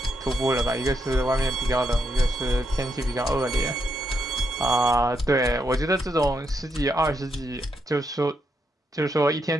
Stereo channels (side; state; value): both; normal; correlation 0.80